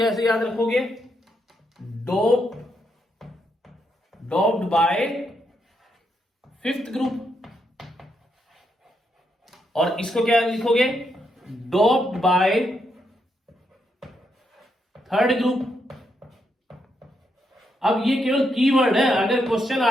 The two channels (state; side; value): normal; both; correlation 0.80